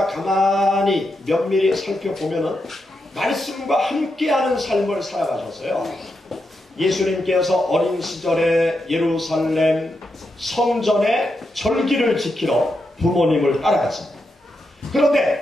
가만히 면밀히 살펴보면은 말씀과 함께하는 삶을 살아가셨어요. 예수님께서 어린 시절에 예루살렘 성전의 절기를 지키러 부모님을 따라갔습니다.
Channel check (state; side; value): normal; both; correlation 0.85